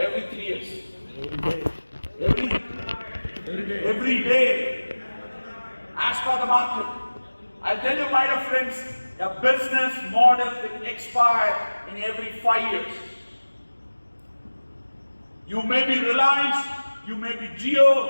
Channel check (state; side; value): inverted; both; correlation -1.00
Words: 3 years. Every day. As per the market. I'll tell you, my dear friends, a business model will expire in every 5 years. You may be Reliance, you may be